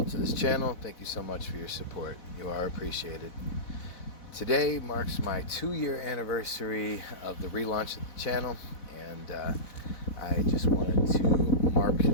to this channel, thank you so much for your support. You are appreciated. Today marks my 2-year anniversary of the relaunch of the channel, and I just wanted to mark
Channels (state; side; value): late; right; 4.1 ms